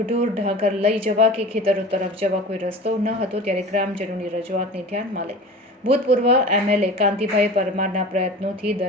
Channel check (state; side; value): normal; both; correlation 0.37